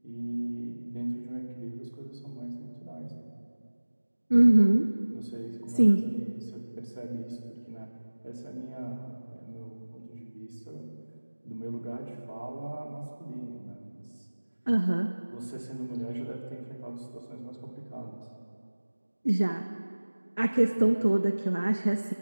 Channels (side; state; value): both; inverted; correlation -1.00